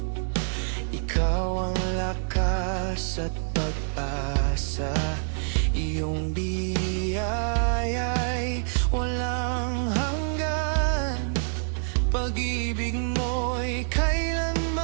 ikaw ang lakas at pag-asa. Iyong biyaya'y walang hanggan, pag-ibig mo'y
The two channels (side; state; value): left; silent; 60 dB below the other